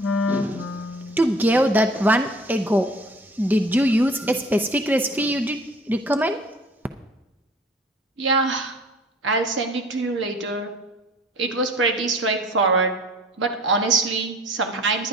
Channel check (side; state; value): both; normal; correlation 0.49